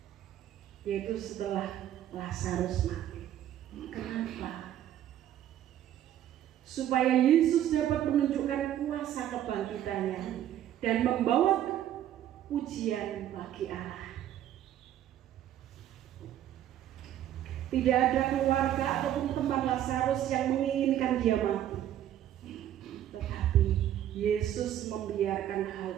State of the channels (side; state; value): left; quieter; 11.5 dB